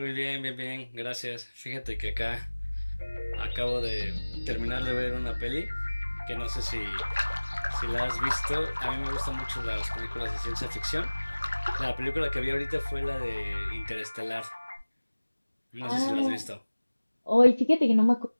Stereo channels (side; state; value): both; inverted; correlation -1.00